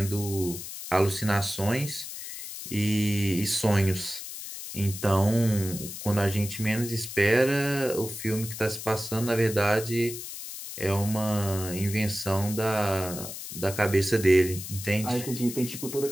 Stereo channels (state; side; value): noise; left; hiss, 9 dB below the sound